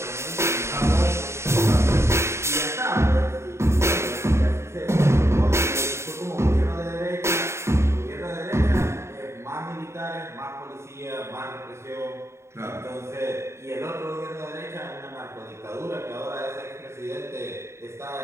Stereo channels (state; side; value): late; left; 0.13 ms